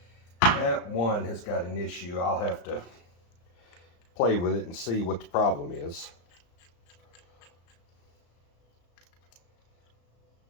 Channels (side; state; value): right; late; 35 ms